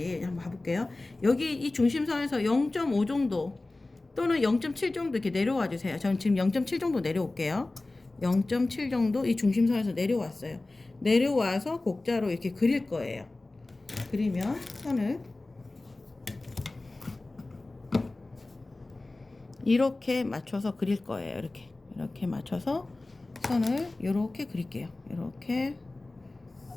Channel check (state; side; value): quieter; right; 3.0 dB